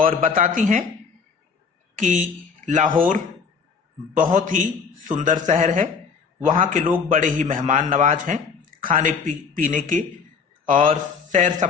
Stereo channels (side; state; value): right; quieter; 5.7 dB